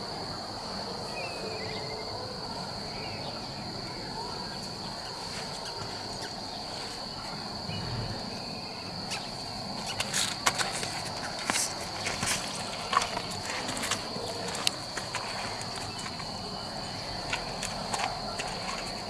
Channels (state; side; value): identical; both; correlation 1.00